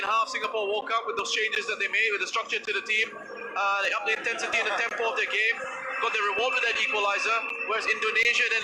half, Singapore woke up with those changes that they made, with the structure to the team. They upped the intensity and the tempo of their game. Got the reward with that equaliser. Whereas Indonesia then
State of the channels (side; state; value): both; identical; correlation 1.00